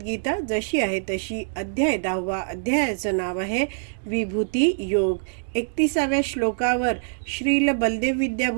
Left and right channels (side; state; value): left; silent; digital silence